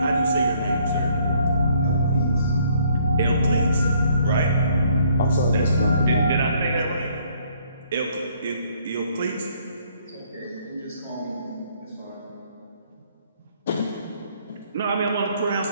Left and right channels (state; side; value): inverted; both; correlation -0.65